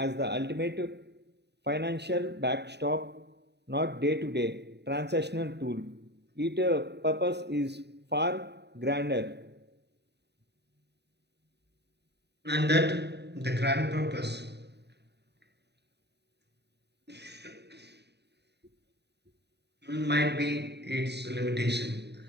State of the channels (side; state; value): left; late; 0.49 ms